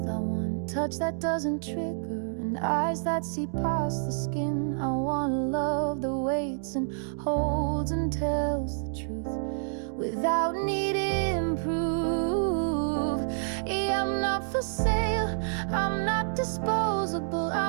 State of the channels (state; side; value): silent; left; digital silence